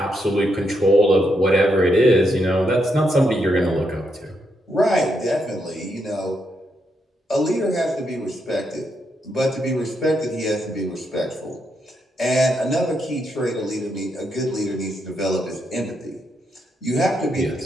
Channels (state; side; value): normal; both; correlation 0.80